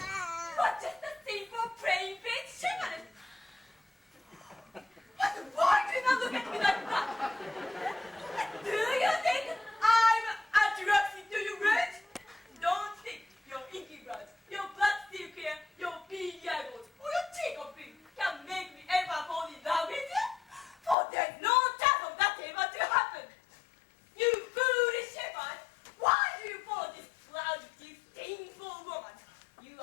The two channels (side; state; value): right; drops out; at 21.0 s